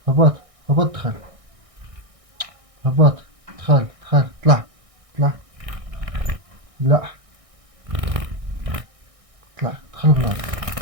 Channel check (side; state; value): left; late; 1.6 ms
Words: هبط. هبط دخل. هبط. دخل. دخل. طلع. طلع. لا. طلع. دخل بلاصتك.